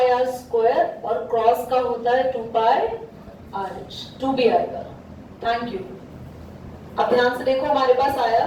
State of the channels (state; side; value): identical; both; correlation 1.00